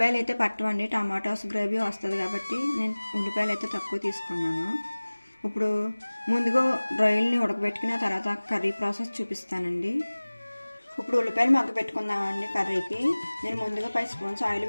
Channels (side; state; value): both; inverted; correlation -1.00